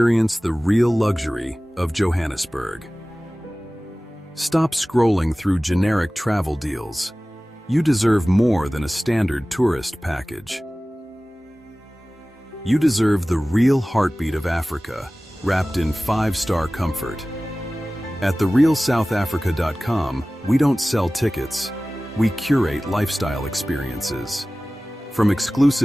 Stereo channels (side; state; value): both; normal; correlation 0.97